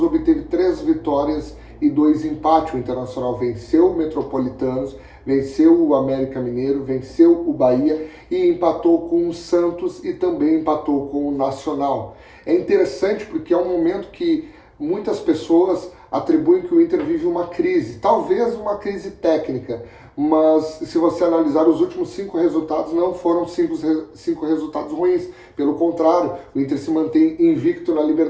obteve 3 vitórias e 2 empates. O Internacional venceu o Metropolitanos, venceu o América Mineiro, venceu o Bahia e empatou com o Santos e também empatou com o Nacional. É interessante porque é um momento que muitas pessoas atribuem que o Inter vive uma crise, talvez uma crise técnica, mas se você analisar os últimos 5 resultados, não foram 5 resultados ruins. Pelo contrário, o Inter se mantém invicto na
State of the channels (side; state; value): both; identical; correlation 1.00